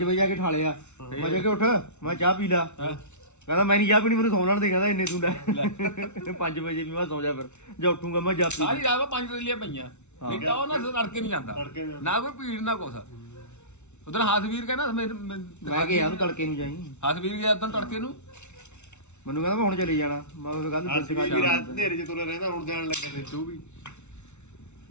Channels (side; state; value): right; late; 0.82 ms